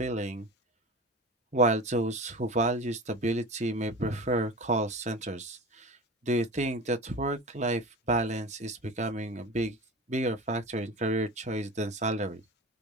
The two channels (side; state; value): both; normal; correlation 0.31